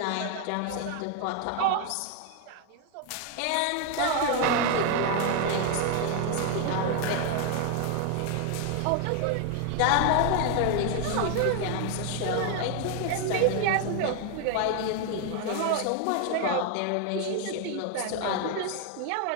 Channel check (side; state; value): both; different; correlation 0.01